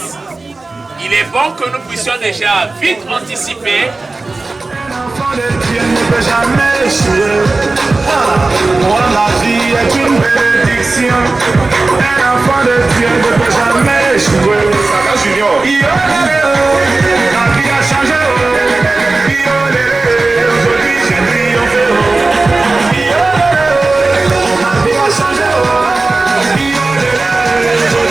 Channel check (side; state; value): left; quieter; 3.4 dB